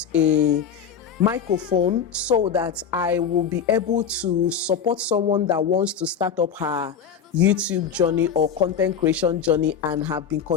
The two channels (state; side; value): quieter; right; 7.3 dB